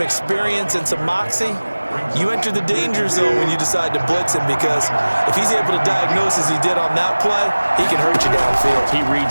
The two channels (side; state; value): both; inverted; correlation -1.00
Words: experience and some moxie, you enter the danger zone when you decide to blitz him because if he's able to diagnose as he did on that play, he can hurt you downfield. He